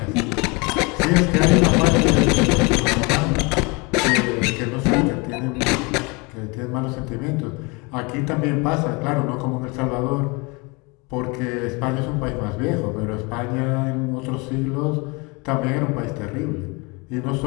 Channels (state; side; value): quieter; right; 28.3 dB